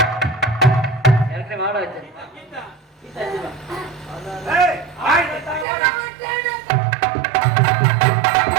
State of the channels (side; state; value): left; drops out; at 5.7 s